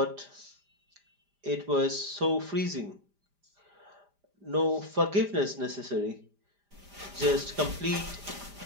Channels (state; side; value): late; left; 5.0 ms